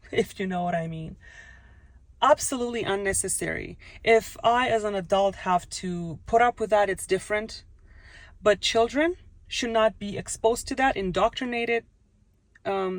if you know what I mean. Absolutely unnecessary. If I, as an adult, have to put up with that, it's different. But children should not be exposed to that, indoctrinated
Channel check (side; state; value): both; identical; correlation 1.00